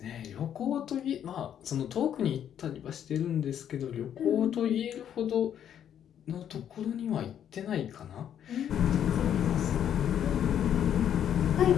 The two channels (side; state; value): right; quieter; 9.6 dB